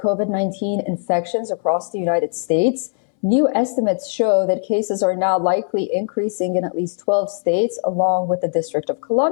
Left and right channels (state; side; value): silent; right; 63 dB below the other